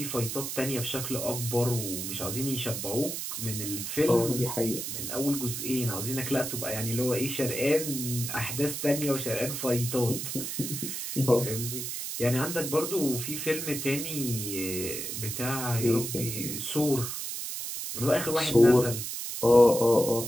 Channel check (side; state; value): right; noise; hiss, 5 dB below the sound